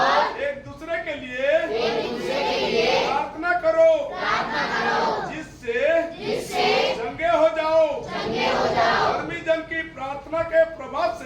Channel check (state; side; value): identical; both; correlation 1.00